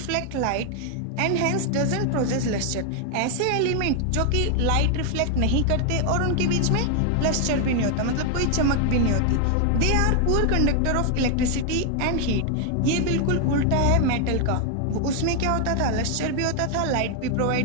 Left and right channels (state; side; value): different; both; correlation 0.00